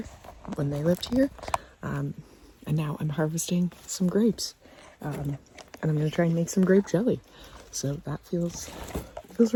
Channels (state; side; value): identical; both; correlation 1.00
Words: when they lived here. And now I'm harvesting some grapes. And I'm gonna try and make some grape jelly. So that feels